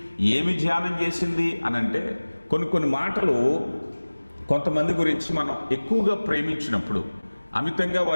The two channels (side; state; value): both; inverted; correlation -1.00